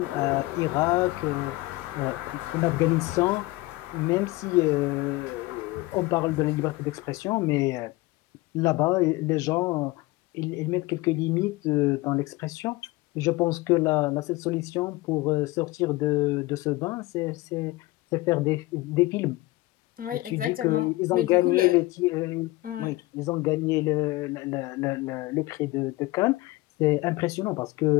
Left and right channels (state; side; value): quieter; right; 20.1 dB